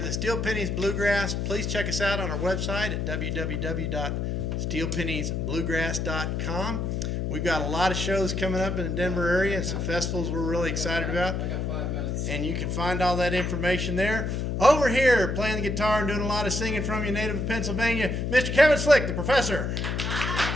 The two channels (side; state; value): left; noise; hum, 1 dB below the sound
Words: the Steel Pennies Bluegrass. Please check us out on our website at www.steelpenniesbluegrass.com. We've got a lot of shows coming up in the Denver area and some festivals we're really excited about. And you can find all that information there. Over here, playing the guitar and doing a lot of singing from you, native of Pennsylvania, Mr. Kevin Slick, the professor.